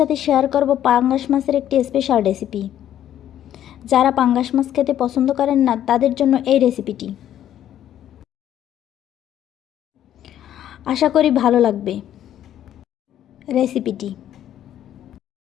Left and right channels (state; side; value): quieter; right; 11.2 dB